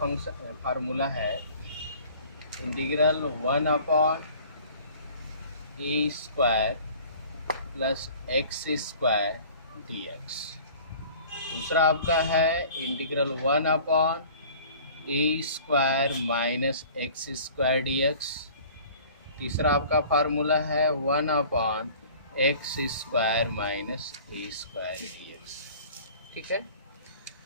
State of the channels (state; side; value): inverted; both; correlation -0.48